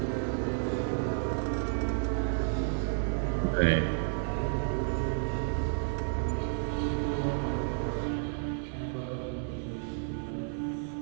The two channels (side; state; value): left; silent; 57 dB below the other